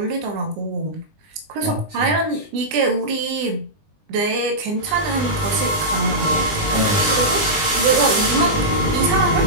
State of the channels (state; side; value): late; left; 20 ms